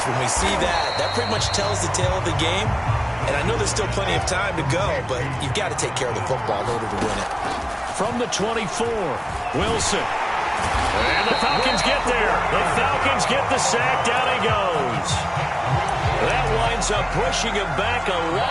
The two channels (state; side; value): identical; both; correlation 1.00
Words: when we see that, that pretty much tells the tale of the game. And I know there's still plenty of time to go, but you've got to take care of the football in order to win it. From the 24, Wilson. And the Falcons get there. The Falcons get the sack. Down he goes. That winds up pushing him back 11